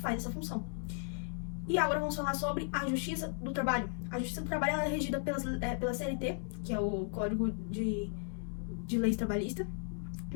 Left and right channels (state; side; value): silent; right; 54 dB below the other